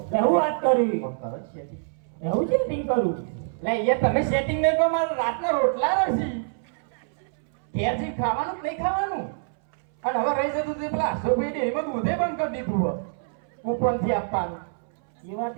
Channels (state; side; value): silent; left; 61 dB below the other